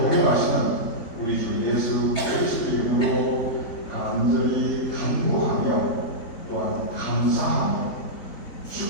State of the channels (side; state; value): right; late; 3.7 ms